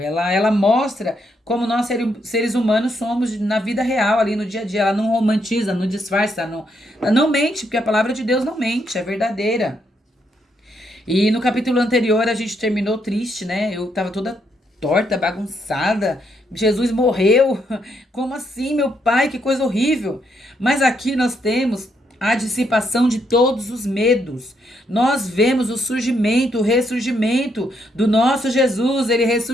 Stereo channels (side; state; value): both; normal; correlation 0.76